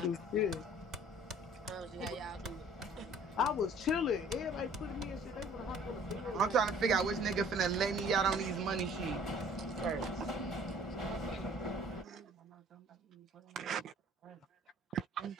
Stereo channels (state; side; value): normal; both; correlation 0.53